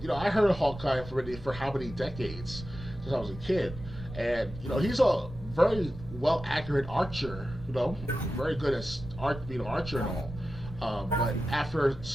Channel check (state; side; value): noise; right; rumble, 13 dB below the sound